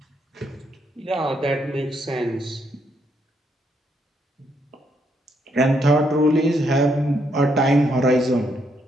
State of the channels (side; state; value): both; normal; correlation 0.74